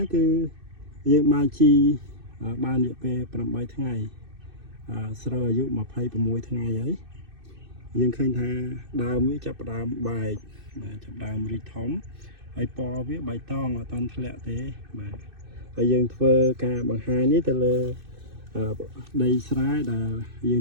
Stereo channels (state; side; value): late; left; 2.6 ms